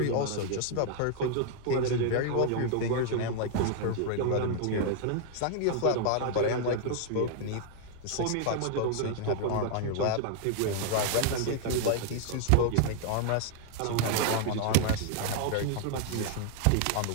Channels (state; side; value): different; both; correlation 0.00